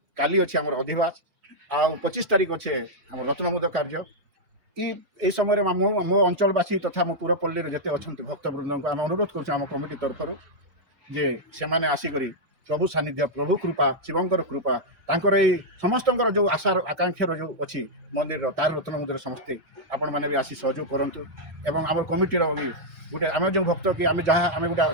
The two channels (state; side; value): late; left; 3.4 ms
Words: କାଲି ଅଛି ଆମର ଅଧିବାସ ଆଉ 25 ତାରିଖ ଅଛି ଆମର ରତ୍ନମୁଦ କାର୍ଯ୍ୟ। এই ସମୟରେ ମୋ ଅଞ୍ଚଳବାସୀ ତଥା ମୋ ପୁରପଲ୍ଲୀରେ ଯେତେ ଅଛନ୍ତି ଭକ୍ତବୃନ୍ଦଙ୍କୁ ଆମେ ଅନୁରୋଧ କରୁଛୁ ଆମ କମିଟି ତରଫରୁ ଯେ ସେମାନେ ଆସିକରି ପ୍ରଭୁ ସାନ୍ନିଧ୍ୟ ପ୍ରଭୁ କୃପା ଶିବଙ୍କର କୃପା ତାଙ୍କର ଏଇ ସମସ୍ତଙ୍କର ଯେଉଁ ଆଶାର ଆକାଂକ୍ଷାର ଯେଉଁ ଅଛି ମନ୍ଦିରର ତାର ରତ୍ନମୁଦ୍ରାରେ ସମସ୍ତେ ଆପଣମାନେ ବି ଆସି ସହଯୋଗ କରନ୍ତୁ। ଏବଂ ଆମର କମିଟିର ବି ଗୋଟେ ଆମେ ଯେଉଁ ଭକ୍ତ କି ଆମେ ଯାହା ଆମେ ଗୋଟେ